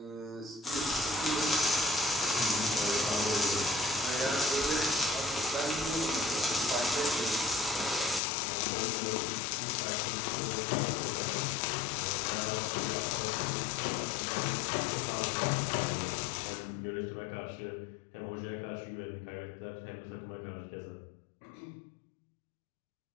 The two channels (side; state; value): right; drops out; at 8.2 s